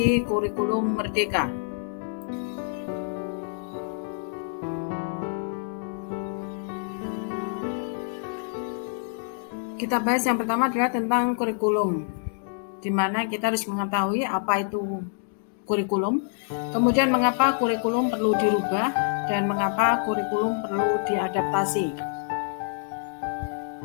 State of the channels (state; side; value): silent; right; digital silence